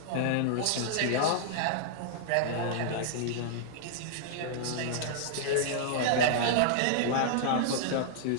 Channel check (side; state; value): both; different; correlation -0.01